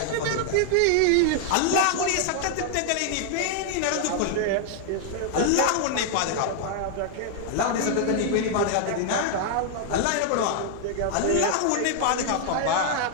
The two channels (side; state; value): both; different; correlation 0.00